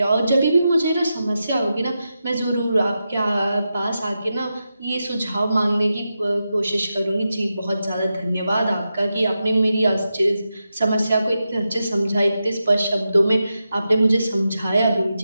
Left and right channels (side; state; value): both; inverted; correlation -0.89